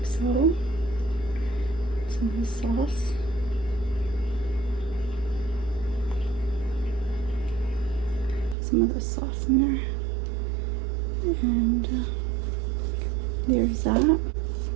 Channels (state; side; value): drops out; left; at 8.6 s